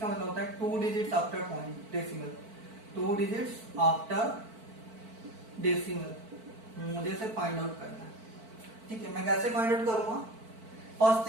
का मतलब होता है 2 digits after point decimal, 2 digits after decimal मुझे से फाइंड आउट करना है। ठीक है, मैं कैसे फाइंड आउट करूंगा? फर्स्ट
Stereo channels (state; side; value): late; left; 4.5 ms